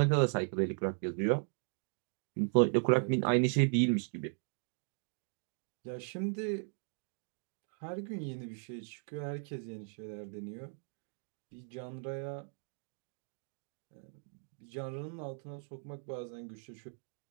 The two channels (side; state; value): left; silent; 53 dB below the other